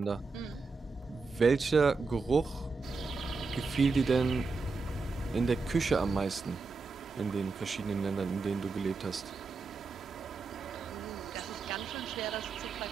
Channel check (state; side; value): quieter; left; 4.2 dB